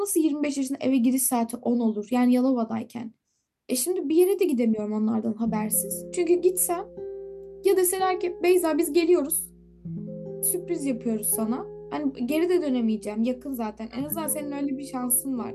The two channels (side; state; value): both; identical; correlation 1.00